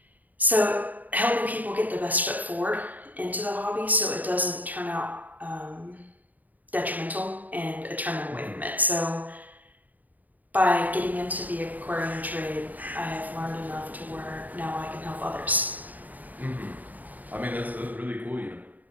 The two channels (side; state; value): left; late; 0.080 ms